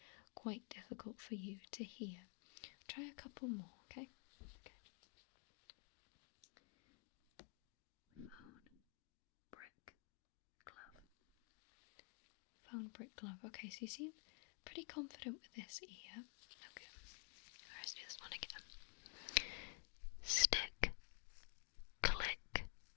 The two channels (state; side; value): quieter; right; 31.3 dB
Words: quite difficult for you to hear. Try a couple more, okay? Phone, brick, glove. Phone, brick, glove. Okay, so you seem pretty confident with this ear. Okay, let's do this one again. Stick, click,